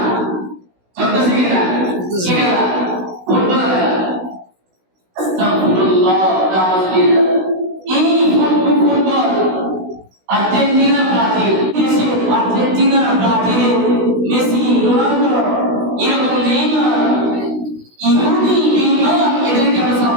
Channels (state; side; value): late; left; 16 ms